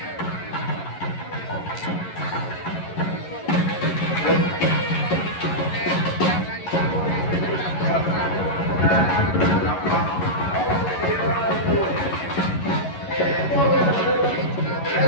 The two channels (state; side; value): late; right; 11 ms